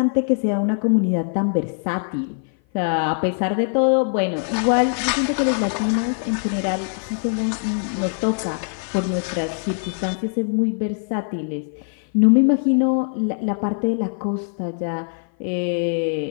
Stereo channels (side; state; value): right; silent; 56 dB below the other